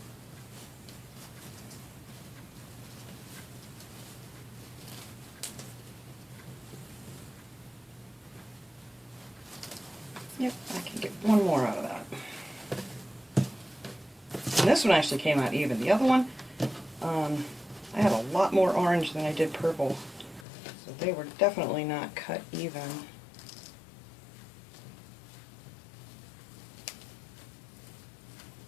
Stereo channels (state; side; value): drops out; right; at 20.5 s